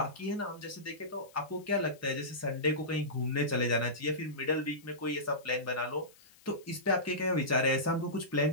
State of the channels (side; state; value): left; noise; hiss, 26 dB below the sound